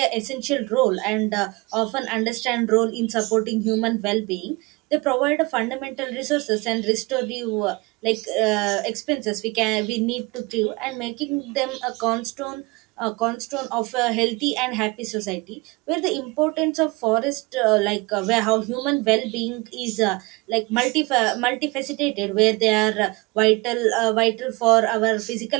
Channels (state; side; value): quieter; left; 25.1 dB